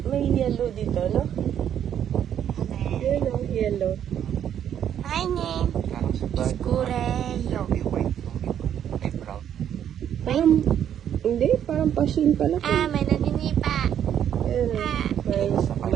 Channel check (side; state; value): left; quieter; 9.7 dB